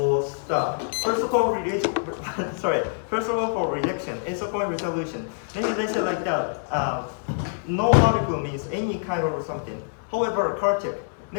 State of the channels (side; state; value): right; silent; digital silence